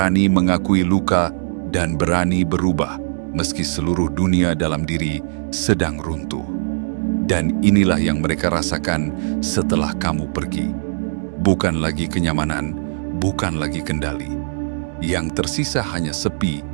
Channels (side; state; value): left; silent; digital silence